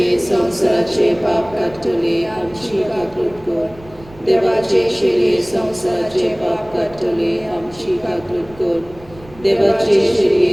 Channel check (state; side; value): noise; right; rumble, 22 dB below the sound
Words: संवसाराचे पाप काडटले आमची काकूट कर. देवाचे शिरे संवसाराचे पाप काडटले आमची काकूट कर. देवाचे